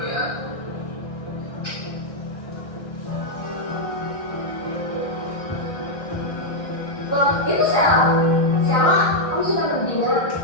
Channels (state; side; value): late; right; 1.6 ms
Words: ya. Itu Sheila, kamu sudah berdina?